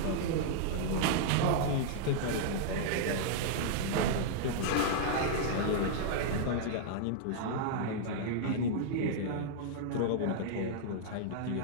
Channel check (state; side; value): different; both; correlation -0.01